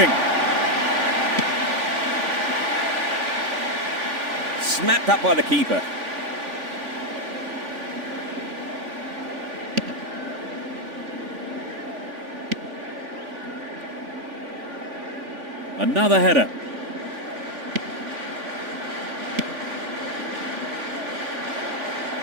Snapped up by the keeper. Another header.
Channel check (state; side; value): late; left; 3.5 ms